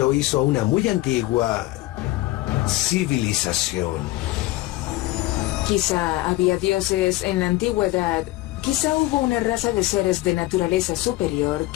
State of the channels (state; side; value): quieter; right; 18.1 dB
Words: hizo una muy antigua civilización. Quizá había dioses en la antigüedad. Quizá hubo una raza de seres de naturaleza superior